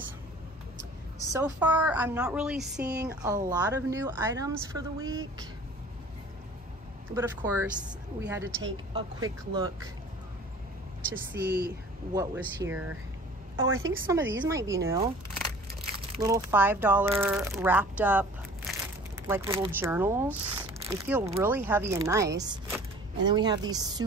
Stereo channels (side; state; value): both; normal; correlation 0.47